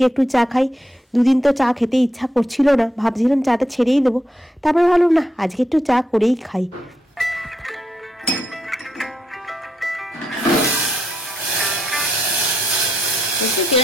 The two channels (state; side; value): normal; both; correlation 0.81